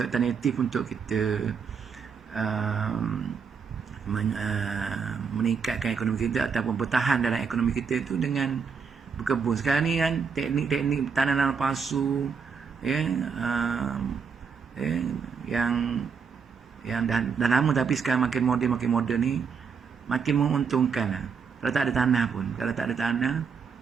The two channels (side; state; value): left; quieter; 6.0 dB